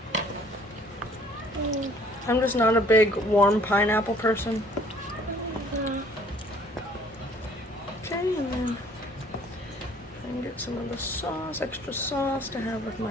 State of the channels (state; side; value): normal; both; correlation 0.57